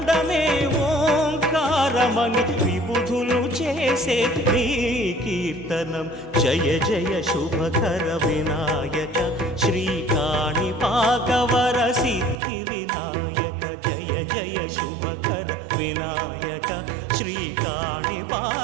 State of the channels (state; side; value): drops out; left; at 12.4 s